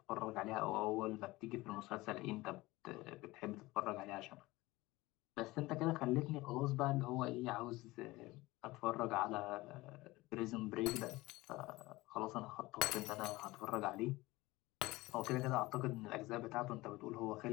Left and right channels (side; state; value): right; quieter; 20.0 dB